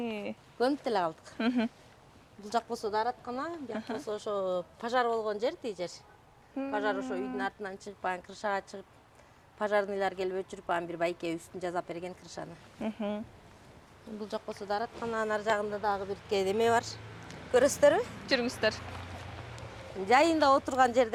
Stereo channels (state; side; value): identical; both; correlation 1.00